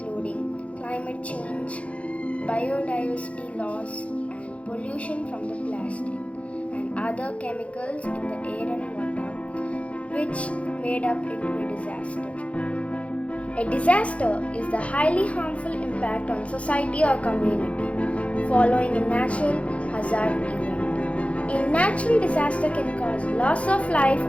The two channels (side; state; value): right; late; 0.063 ms